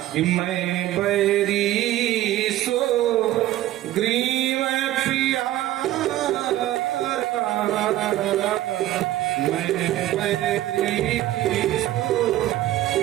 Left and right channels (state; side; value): quieter; left; 14.6 dB